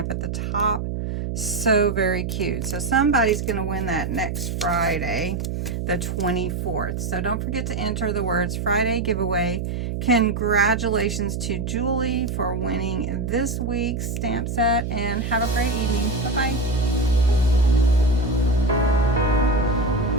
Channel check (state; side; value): noise; right; hum, 3 dB below the sound